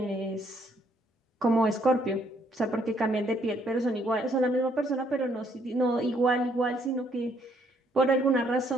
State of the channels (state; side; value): normal; both; correlation 0.68